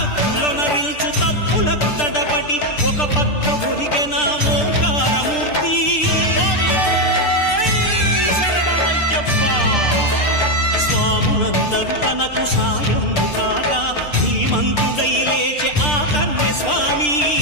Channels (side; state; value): right; late; 6.7 ms